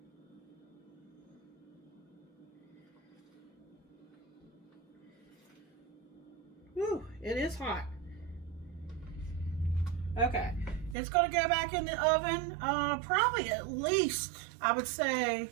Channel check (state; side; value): drops out; left; at 11.0 s